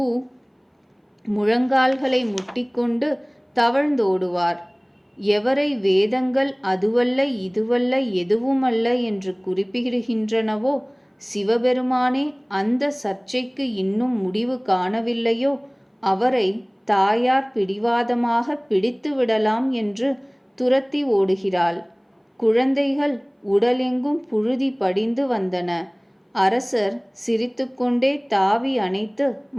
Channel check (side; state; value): both; identical; correlation 1.00